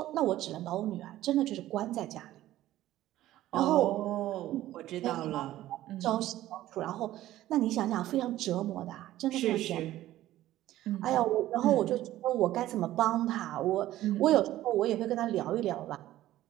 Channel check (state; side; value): quieter; left; 14.5 dB